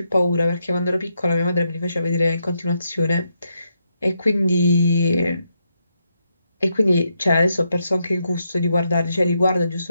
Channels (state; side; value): inverted; both; correlation -0.81